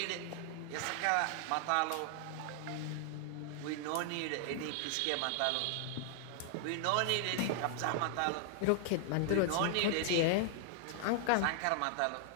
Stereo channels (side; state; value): both; different; correlation 0.00